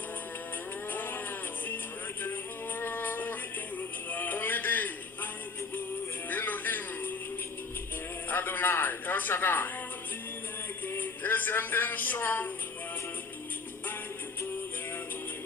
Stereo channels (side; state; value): right; quieter; 4.4 dB